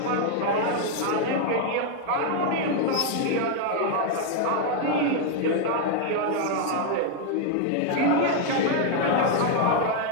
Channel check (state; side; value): different; both; correlation 0.00